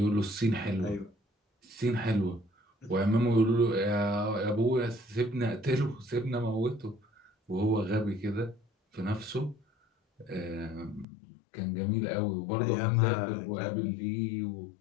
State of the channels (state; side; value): drops out; right; at 11.1 s